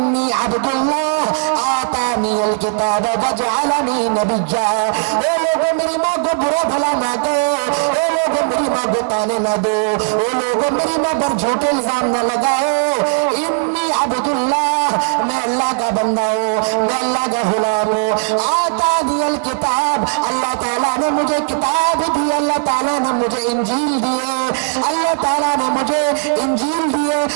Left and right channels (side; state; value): left; silent; digital silence